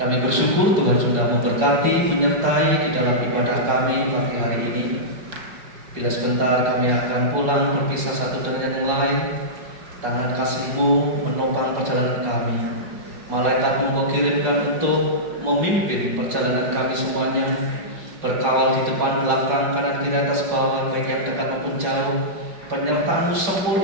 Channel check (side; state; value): left; late; 5.4 ms